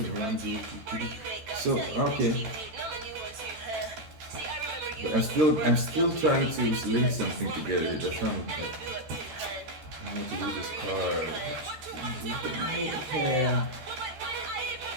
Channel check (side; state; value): left; late; 13 ms